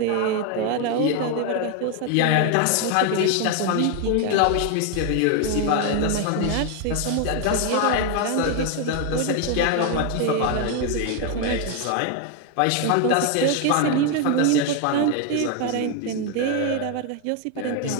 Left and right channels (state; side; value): different; both; correlation 0.01